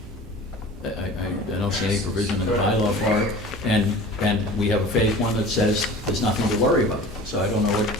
I don't see any provision in the bylaw for it, and we have a phase one that says there's nothing to worry about. So I don't know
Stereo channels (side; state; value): both; normal; correlation 0.40